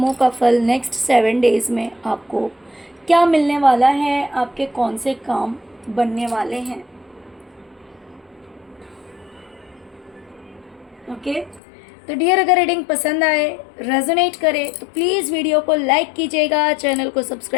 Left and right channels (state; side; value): drops out; right; at 11.6 s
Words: का फल नेक्स्ट 7 डेज़ में आपको क्या मिलने वाला है, आपके कौन से काम बनने वाले हैं। ओके, तो डियर, अगर रीडिंग पसंद आए, रेजोनेट करे तो प्लीज़ वीडियो को लाइक कीजिएगा, चैनल को